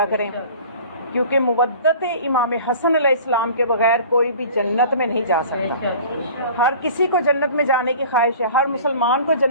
کریں، کیونکہ مودت امام حسن علیہ السلام کے بغیر کوئی بھی جنت میں نہیں جا سکتا۔ ہر کسی کو جنت میں جانے کی خواہش ہے، ہر مسلمان کو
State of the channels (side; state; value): both; inverted; correlation -0.44